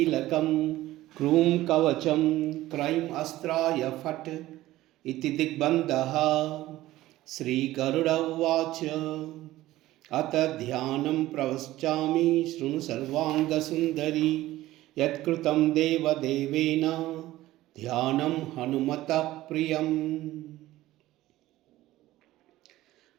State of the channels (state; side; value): quieter; left; 16.0 dB